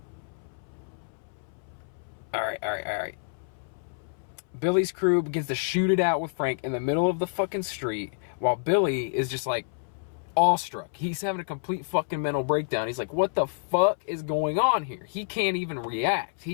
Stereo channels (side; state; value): right; silent; 59 dB below the other